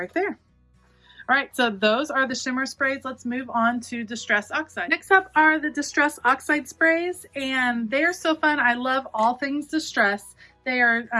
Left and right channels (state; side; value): identical; both; correlation 1.00